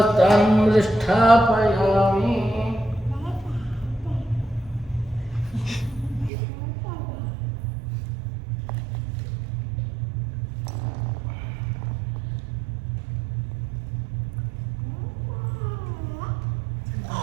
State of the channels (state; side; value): drops out; left; at 6.3 s